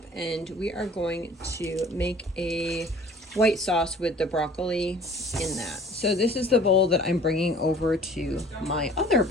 and we are going to make a white sauce with the broccoli in that. So this is the bowl that I'm bringing over to my other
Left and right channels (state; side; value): normal; both; correlation 0.50